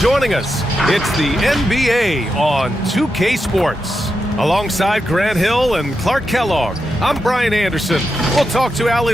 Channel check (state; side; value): normal; both; correlation 0.87